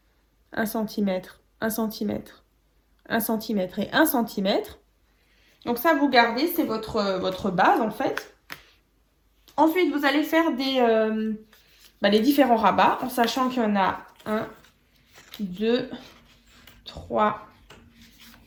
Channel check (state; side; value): identical; both; correlation 1.00